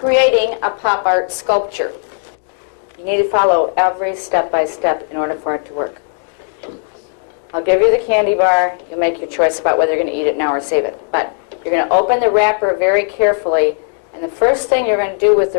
a pop art sculpture. You need to follow every step by step in order for it to work. I'll give you the candy bar. You'll make your choice about whether you're going to eat it now or save it. But you're going to open the wrapper very carefully, and the first thing you're going to do with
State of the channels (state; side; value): silent; right; digital silence